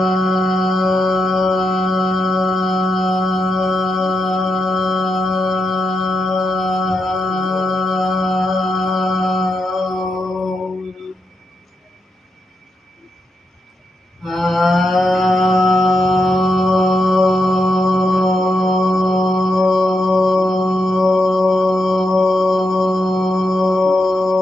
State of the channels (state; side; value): normal; both; correlation 0.85